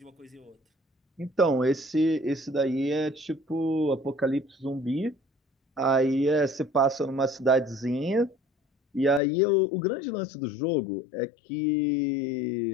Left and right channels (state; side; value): drops out; right; at 9.2 s